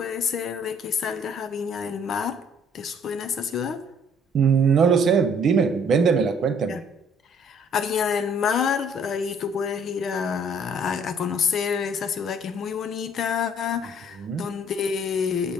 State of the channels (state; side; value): normal; both; correlation 0.59